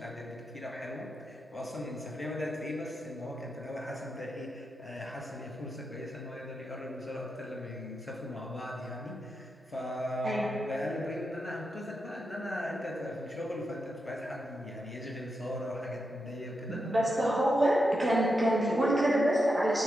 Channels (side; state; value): both; normal; correlation 0.86